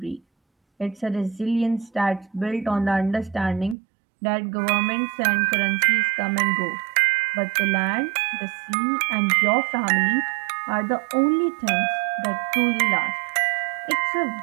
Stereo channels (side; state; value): left; drops out; at 3.8 s